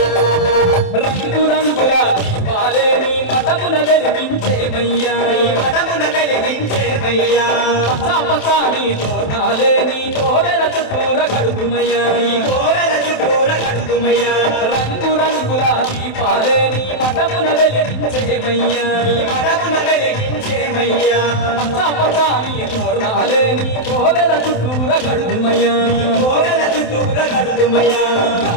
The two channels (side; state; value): right; late; 27 ms